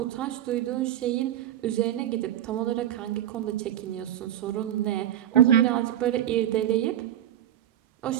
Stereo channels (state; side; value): quieter; left; 11.6 dB